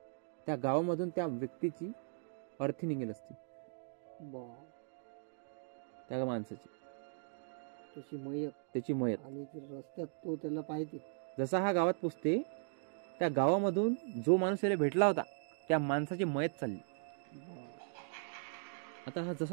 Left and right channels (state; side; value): silent; left; digital silence